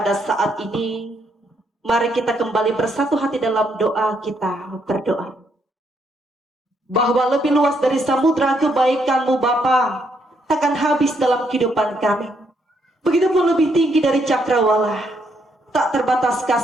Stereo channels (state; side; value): normal; both; correlation 0.74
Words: saat ini, mari kita kembali bersatu hati dalam doa kita berdoa. Bahwa lebih luas dari samudra kebaikan-Mu Bapa takkan habis dalam kehidupan kami. Begitupun lebih tinggi dari cakrawala, tak terbatas